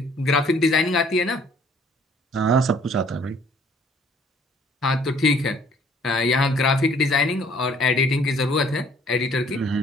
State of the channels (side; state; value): both; normal; correlation 0.58